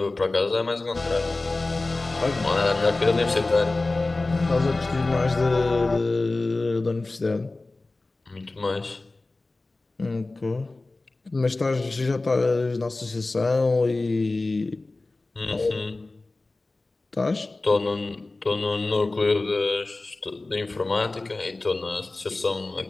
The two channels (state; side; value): quieter; right; 3.2 dB